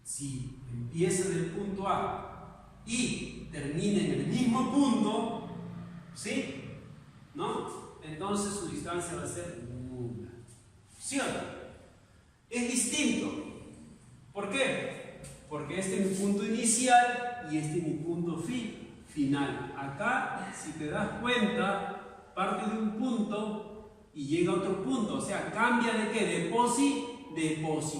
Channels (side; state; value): both; identical; correlation 1.00